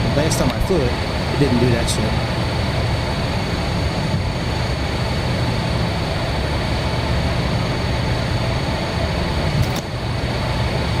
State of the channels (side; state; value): both; identical; correlation 1.00